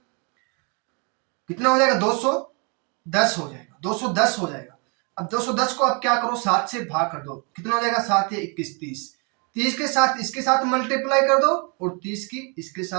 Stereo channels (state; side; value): quieter; left; 34.0 dB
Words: 210 हो जाएगा, 210 हो जाएगा। अब 210 को अब क्या करो, 7 से भाग कर दो, कितना हो जाएगा, 7 या 21 30 के साथ इसके साथ मल्टीप्लाई कर दो और 30 की इसके